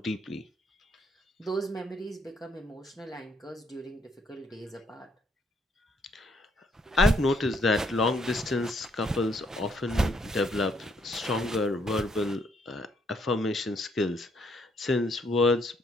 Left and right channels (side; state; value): both; normal; correlation 0.70